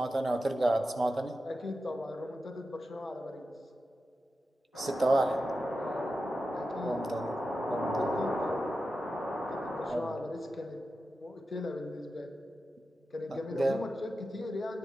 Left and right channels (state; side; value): normal; both; correlation 0.91